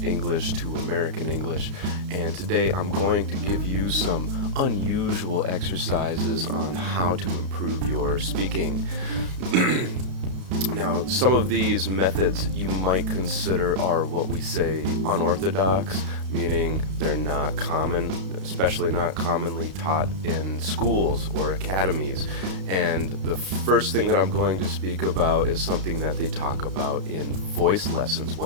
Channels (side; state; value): left; late; 32 ms